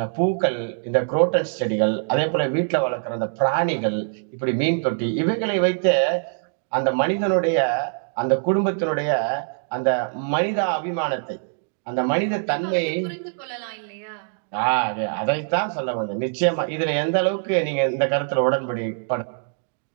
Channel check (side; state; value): left; silent; digital silence